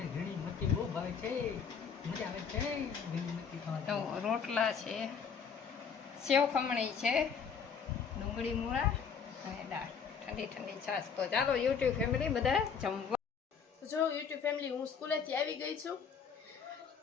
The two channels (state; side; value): quieter; right; 6.4 dB